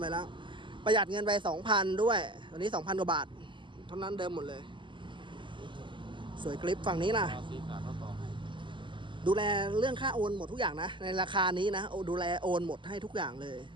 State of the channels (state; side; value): late; left; 0.24 ms